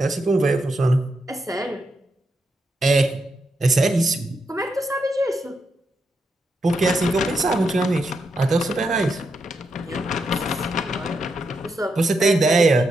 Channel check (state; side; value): normal; both; correlation 0.83